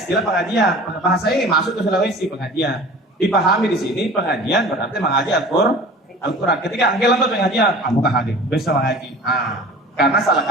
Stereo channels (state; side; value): normal; both; correlation 0.42